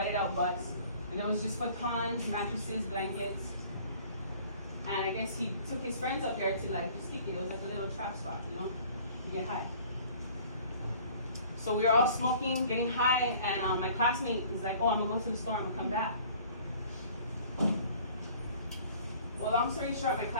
out bus. And there was just futons, mattresses, blankets. And I guess he took his friends up there to just kick it. It was like a little trap spot, to get high. So we were all smoking, getting high, and my classmate was like, oh, I'm gonna go to the store, I'm gonna come back. Well, long story short, my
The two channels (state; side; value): inverted; both; correlation -0.51